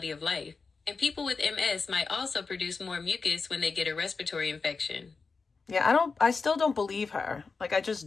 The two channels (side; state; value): right; quieter; 4.6 dB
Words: of life. And people with MS might also produce more mucus when they get a respiratory infection. Yeah, I still don't believe her. Like, I